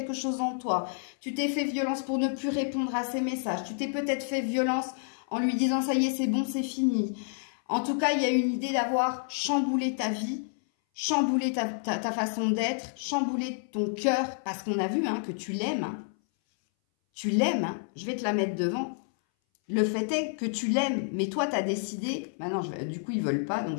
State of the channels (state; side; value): silent; right; 58 dB below the other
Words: chose en toi. Tu t'es fait violence pour ne plus répondre à ses messages. Tu t'es peut-être fait violence en lui disant « ça y est, c'est bon, c'est fini ». En tout cas, il y a une idée d'avoir chamboulé ta vie, chamboulé ta façon d'être, chamboulé ton cœur, parce qu'on a vu hein, que tu l'aimes. Hein. Tu l'aimes, hein. Je vais te la mettre devant. Le fait est que tu l'aimes, mais toi, tu as décidé... Maintenant, du coup, ils ne veulent pas, donc